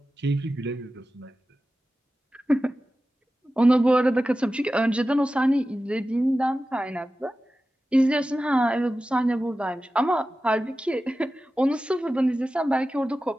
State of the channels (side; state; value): both; normal; correlation 0.94